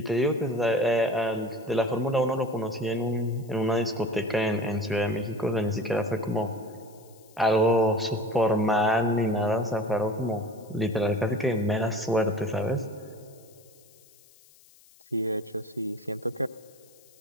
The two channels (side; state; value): left; noise; hiss, 27 dB below the sound